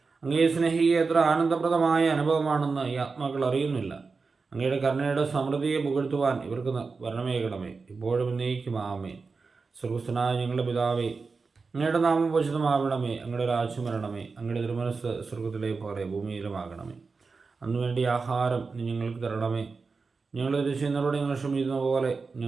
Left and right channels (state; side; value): quieter; left; 4.5 dB